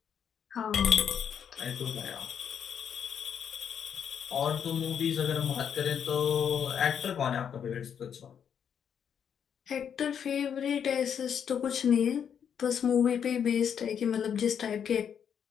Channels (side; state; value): right; quieter; 8.0 dB